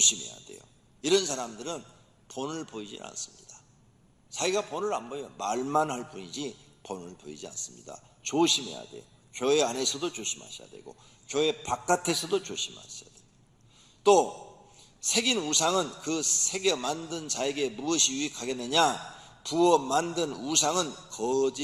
돼요. 이런 사람들은 본을 보이지 않습니다. 자기가 본을 안 보여요. 말만 할 뿐이지 본을 보이지 않습니다. 조심해야 돼요. 교회 안에서도 조심하셔야 되고 교회 바깥에서도 조심하셔야 돼요. 또 새긴 우상은 그 새겨 만든 자에게 무엇이 유익하겠느냐? 부어 만든 우상은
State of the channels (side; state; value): both; identical; correlation 1.00